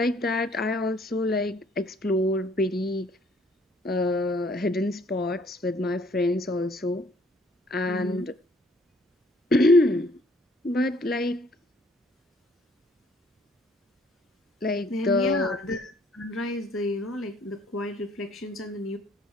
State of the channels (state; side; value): normal; both; correlation 0.62